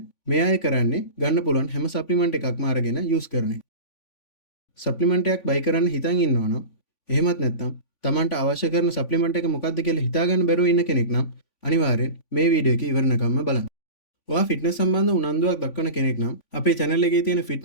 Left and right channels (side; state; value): right; late; 3.5 ms